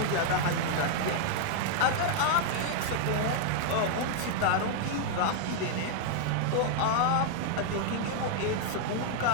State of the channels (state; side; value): different; both; correlation 0.00